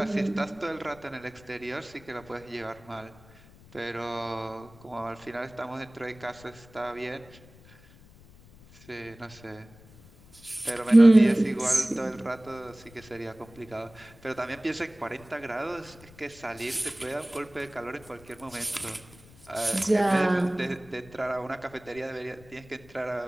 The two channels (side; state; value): left; noise; rumble, 23 dB below the sound